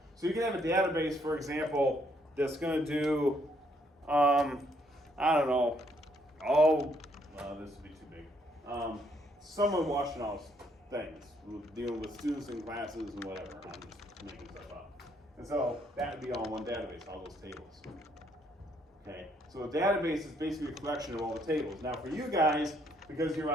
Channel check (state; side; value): normal; both; correlation 0.70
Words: So you can have a database, for example, that's going to do, I don't know, this would be too big. Someone watching all things, dealing with students in classes and whatever. I'm just making stuff up. And so that would be all in one database, all those tables. Okay, so a database is basically a collection of all the tables. Now for you guys, because you're